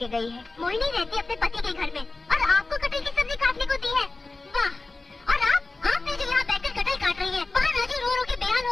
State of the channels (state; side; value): quieter; right; 3.3 dB